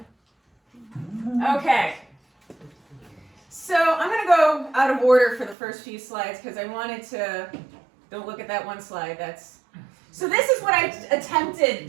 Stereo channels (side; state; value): left; drops out; at 5.6 s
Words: Okay. So I'm going to go out of order for the first few slides because I wanted to, don't look at that one slide. So this is what I attempted